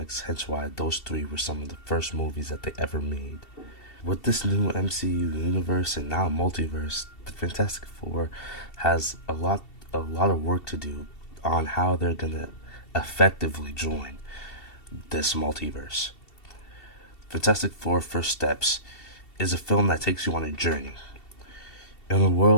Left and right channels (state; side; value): late; right; 2.7 ms